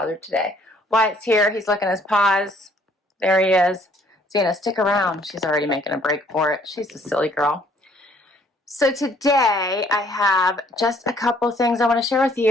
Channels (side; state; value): both; normal; correlation 0.62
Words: today. Wyatt's here. He's licking his paws. There he is. Cena, stick around. She's already making a break for it. She's a silly girl. So today I have just a couple things I want to share with